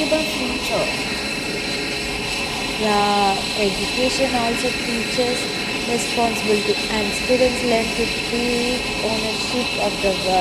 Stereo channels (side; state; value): both; identical; correlation 1.00